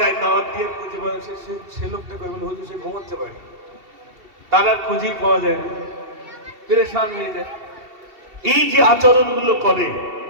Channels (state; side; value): late; left; 2.7 ms